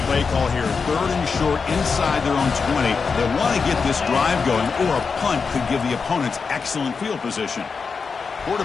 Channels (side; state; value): right; quieter; 5.2 dB